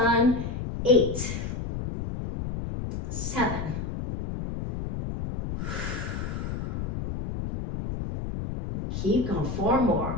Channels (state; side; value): noise; left; rumble, 5 dB below the sound